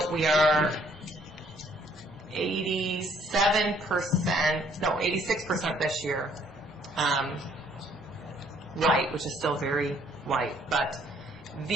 we are 86% this year, white, which is still very white, but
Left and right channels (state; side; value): normal; both; correlation 0.64